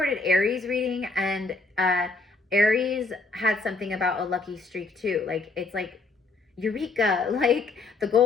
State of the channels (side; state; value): right; quieter; 3.7 dB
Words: Aries reading, and Aries had something about a lucky streak too. Like it's like Eureka, like the